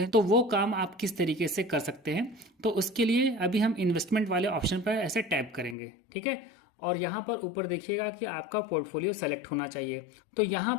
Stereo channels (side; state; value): right; drops out; at 5.8 s